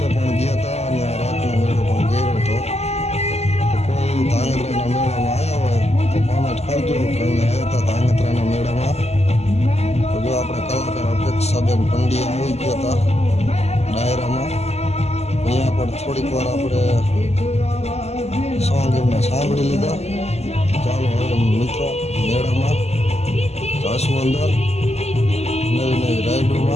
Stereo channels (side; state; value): right; late; 0.31 ms